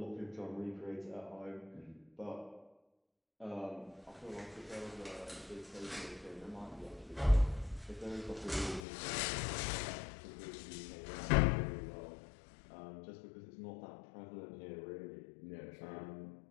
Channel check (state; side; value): drops out; right; at 8.8 s